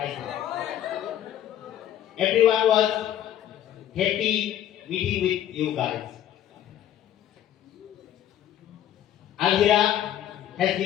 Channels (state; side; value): quieter; right; 11.3 dB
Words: Everyone was happy meeting with you guys. Alvira has